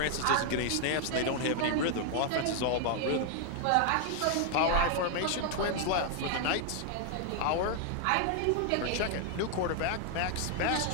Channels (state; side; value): different; both; correlation 0.00